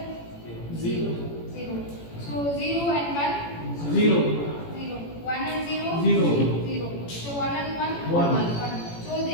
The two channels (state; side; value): late; right; 18 ms